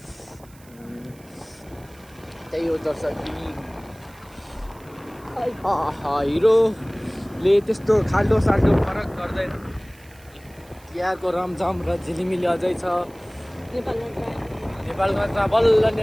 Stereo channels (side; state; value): right; noise; hiss, 26 dB below the sound